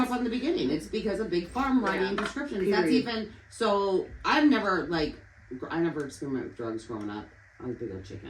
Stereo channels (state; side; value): identical; both; correlation 1.00